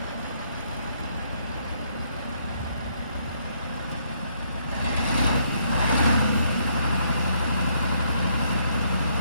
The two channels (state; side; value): inverted; both; correlation -0.70